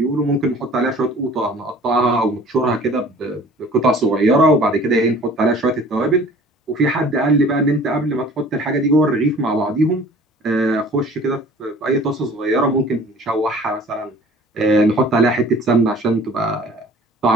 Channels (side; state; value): both; normal; correlation 0.48